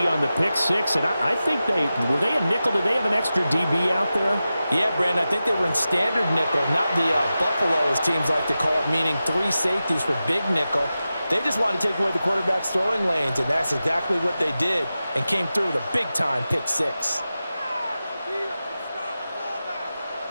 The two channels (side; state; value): both; inverted; correlation -0.93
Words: on the pick six. And I think were they a nickel? Did they have an extra DB out there? Yeah, Brandon, I think they were in standard nickel, not the Buffalo, as teams like to call it, meaning 3 safeties for big nickel. They just wanted to take away the quarterback's throwing lanes, and that's exactly what they did, and came through with a big-time pick six.